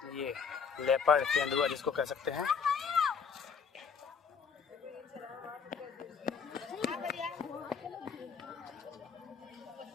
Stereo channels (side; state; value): right; quieter; 6.1 dB